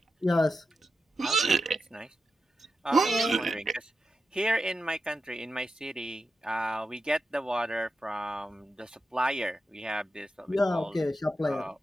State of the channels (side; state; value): both; normal; correlation 0.89